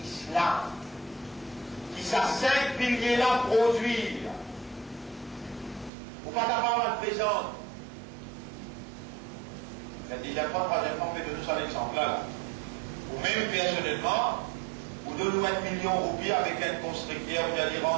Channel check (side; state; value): left; drops out; at 5.9 s